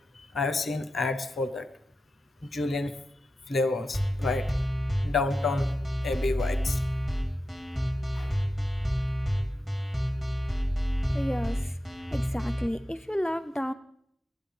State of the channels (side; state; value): both; normal; correlation 0.90